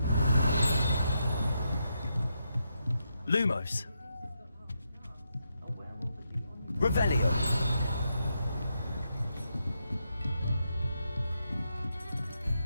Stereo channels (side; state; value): both; inverted; correlation -0.82